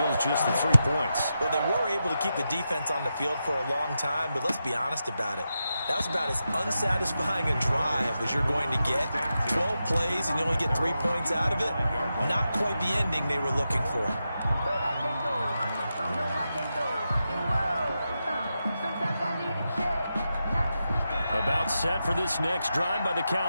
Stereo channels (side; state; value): both; inverted; correlation -0.89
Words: just the 3 points. Well, they were able to keep the defense on the field for a long time, but let's be honest about it. That was about as unsatisfying a drive as you're going to get. 12 plays and you only get 3 points out of it. Not quite the ending they were looking for. About set for this next drive by the